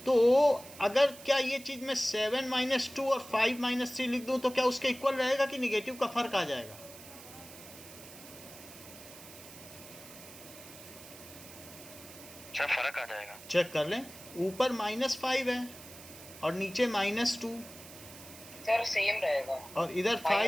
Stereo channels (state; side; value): noise; right; hiss, 17 dB below the sound